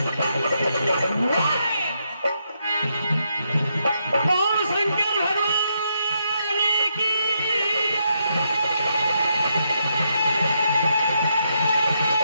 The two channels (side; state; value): both; inverted; correlation -0.79